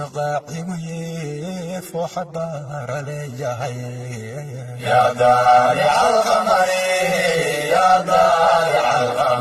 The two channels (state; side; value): identical; both; correlation 1.00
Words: qaacigu yee fooxa baara leeyahay yaa daalica alqamari yaa daalica